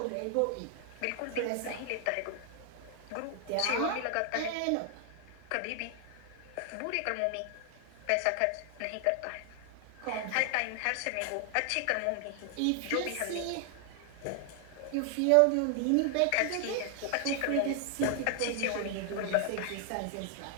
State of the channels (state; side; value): different; both; correlation 0.00